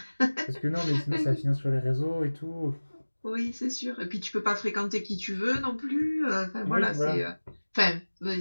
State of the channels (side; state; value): both; inverted; correlation -1.00